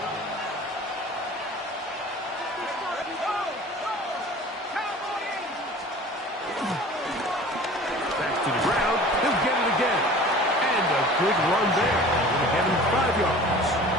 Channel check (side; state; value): both; normal; correlation 0.43